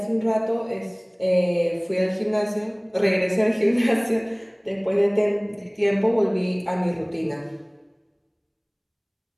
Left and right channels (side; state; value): both; identical; correlation 1.00